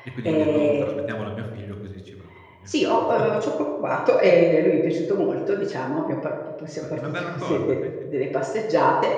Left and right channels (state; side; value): identical; both; correlation 1.00